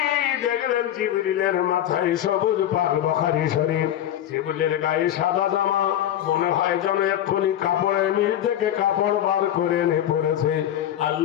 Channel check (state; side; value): quieter; right; 11.4 dB